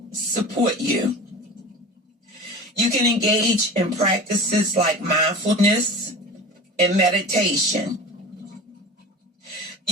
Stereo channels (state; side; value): normal; both; correlation 0.34